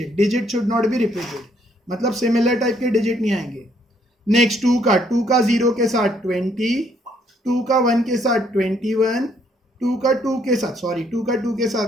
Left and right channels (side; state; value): both; normal; correlation 0.68